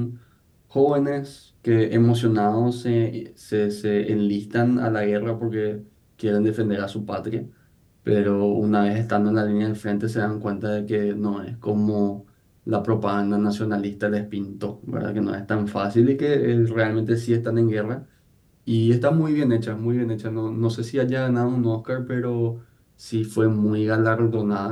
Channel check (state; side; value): identical; both; correlation 1.00